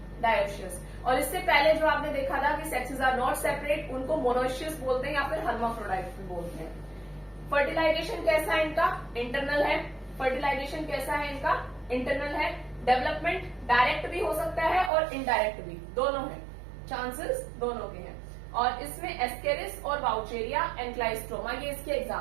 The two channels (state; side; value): drops out; left; at 14.9 s